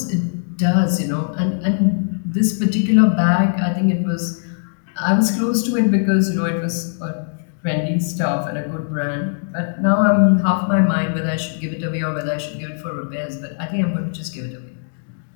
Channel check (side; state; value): right; silent; digital silence